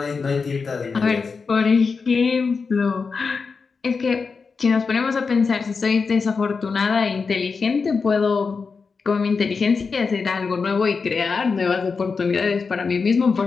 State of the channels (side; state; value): right; quieter; 4.9 dB